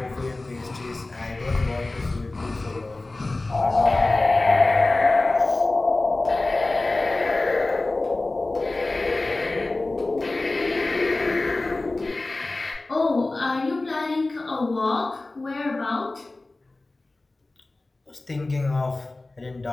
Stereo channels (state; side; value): quieter; right; 3.1 dB